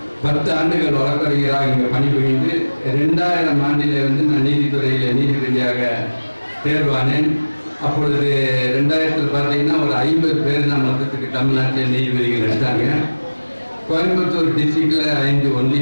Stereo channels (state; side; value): inverted; both; correlation -1.00